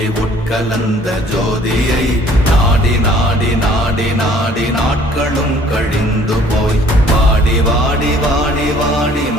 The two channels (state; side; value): normal; both; correlation 0.56